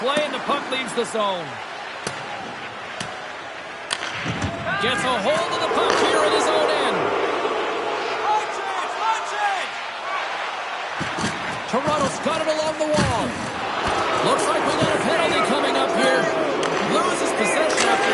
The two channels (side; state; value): both; identical; correlation 1.00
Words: play, and the puck leaves the zone. Gets a hold of the puck here at his own end. Toronto's got it along the wall. Looks like we got a penalty coming up here. Loses possession after